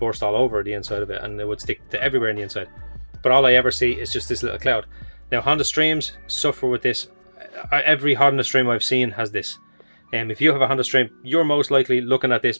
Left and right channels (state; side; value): inverted; both; correlation -1.00